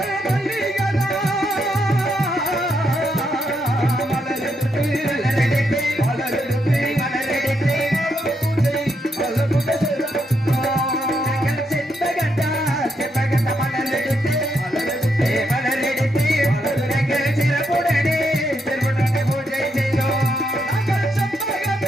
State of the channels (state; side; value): normal; both; correlation 0.79